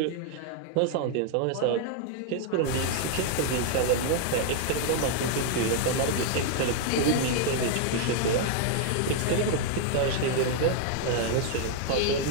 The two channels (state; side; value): different; both; correlation 0.00